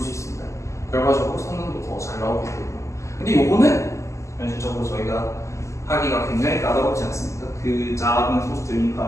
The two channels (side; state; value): right; late; 0.14 ms